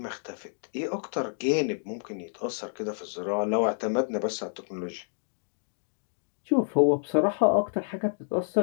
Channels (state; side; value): silent; right; digital silence